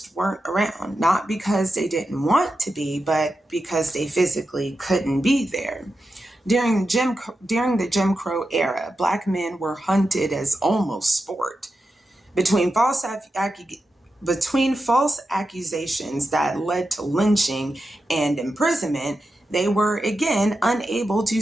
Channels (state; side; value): normal; both; correlation 0.90